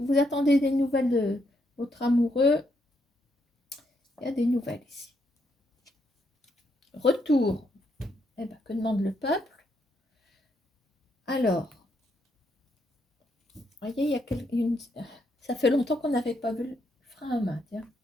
vous attendez des nouvelles de votre amoureux, il y a des nouvelles ici. Retour. Eh ben, que demande le peuple? Alors, voyez, il y a une... Ça fait longtemps qu'on n'avait pas vu le frein à main, tiens.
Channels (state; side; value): normal; both; correlation 0.77